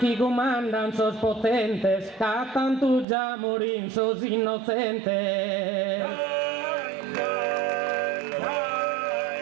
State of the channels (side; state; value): left; drops out; at 3.1 s